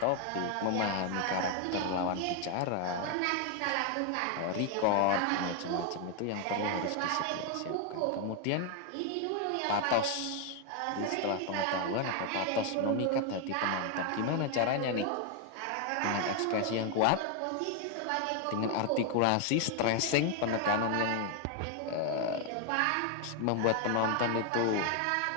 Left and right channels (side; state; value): both; different; correlation 0.00